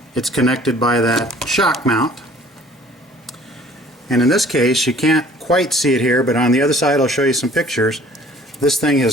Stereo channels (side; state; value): both; normal; correlation 0.53